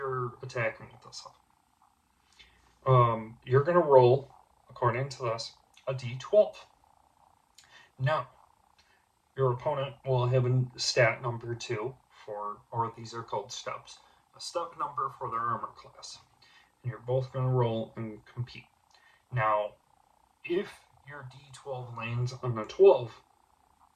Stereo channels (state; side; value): identical; both; correlation 1.00